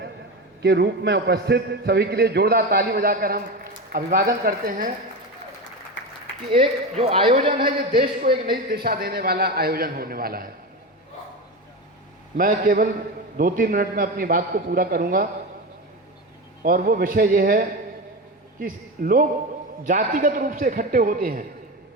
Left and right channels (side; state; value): both; normal; correlation 0.21